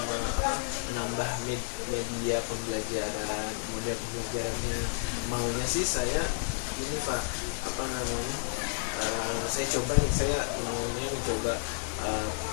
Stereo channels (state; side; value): silent; right; digital silence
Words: menambah media pembelajaran, model pembelajarannya. Maunya sih saya ini Pak, saya coba nih, saya maunya mencoba